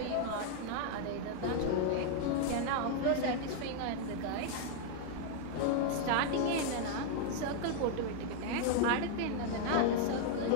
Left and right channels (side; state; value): both; different; correlation 0.00